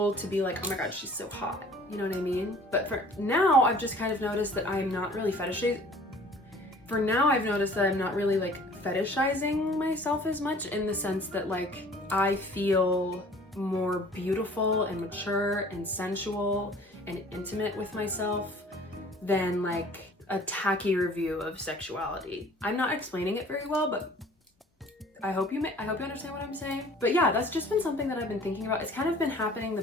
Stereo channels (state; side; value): normal; both; correlation 0.50